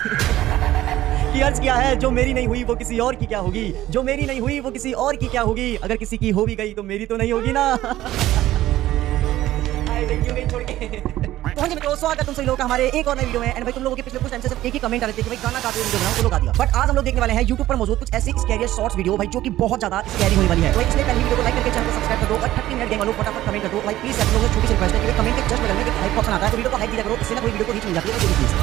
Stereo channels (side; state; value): left; quieter; 14.7 dB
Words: कि अर्ज किया है जो मेरी नहीं हुई वो किसी और की क्या होगी, जो मेरी नहीं हुई वो किसी और की क्या होगी, अगर किसी की हो भी गई तो मेरी तो नहीं होगी ना। क्यों गई छोड़ के। तो हाँ जी मित्रों, स्वागत तुम सभी लोगों का हमारे एक और नए वीडियो में। एंड भाई तुम लोगों के पिछले कुछ टाइम से सिर्फ एक ही कमेंट आ रहे थे कि भाई गाना गाते हुए वीडियो बनाओ, तो लोग आ दिया। बट आज हम लोग देखने वाले हैं YouTube पर मौजूद कुछ ऐसी स्कैरी शॉर्ट्स वीडियो भाई जो कि बहुत ज्यादा स्कैरी होने वाली है। तो इसलिए पहले वीडियो को लाइक करके चैनल को सब्सक्राइब कर दो और 30 मिनट गेम वालों फटाफट कमेंट कर दो भाई प्लीज। आप लोगों से छोटी सी रिक्वेस्ट है कि कमेंट के जस्ट बगल में एक हाइप ऑप्शन आता है तो वीडियो को हाइप दिया करो, इससे ना कोई वीडियो को रीच मिल जाती है।